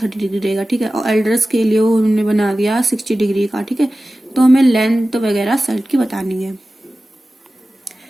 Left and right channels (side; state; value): both; normal; correlation 0.95